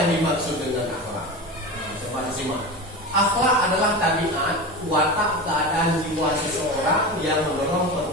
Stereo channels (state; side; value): normal; both; correlation 0.26